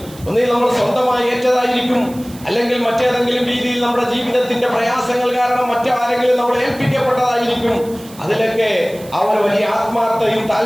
ഒന്നിൽ നമ്മൾ സ്വന്തമായി ഏറ്റതായിരിക്കും, അല്ലെങ്കിൽ മറ്റേതെങ്കിലും രീതിയിൽ നമ്മുടെ ജീവിതത്തിന്റെ പ്രയാസങ്ങൾ കാരണം മറ്റാരെങ്കിലും നമ്മൾ ഏൽപ്പിക്കപ്പെട്ടതായിരിക്കും. അതിലൊക്കെ അവർ വലിയ ആത്മാർത്ഥയും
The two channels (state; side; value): noise; right; hiss, 20 dB below the sound